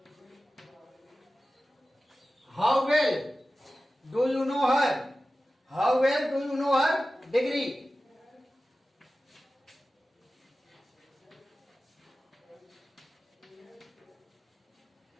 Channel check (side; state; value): both; normal; correlation 0.95